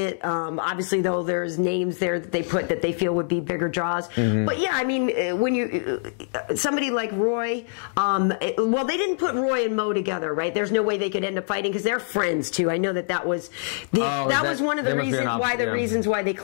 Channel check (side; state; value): right; silent; digital silence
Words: Obviously, though, there's names there that they put that they feel would be bigger draws. But yeah, I mean, when you somebody like Roy, well, they didn't put Roy and Mo together, right? There's no way they could end up fighting because they're friends too. I know that was was one of the reasons why they